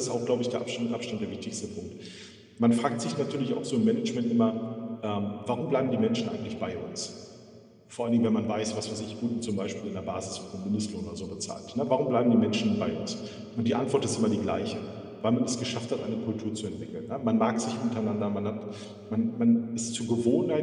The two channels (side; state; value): both; identical; correlation 1.00